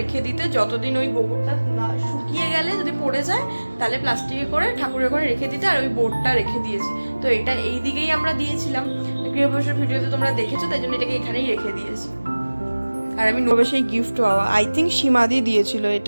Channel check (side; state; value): both; inverted; correlation -1.00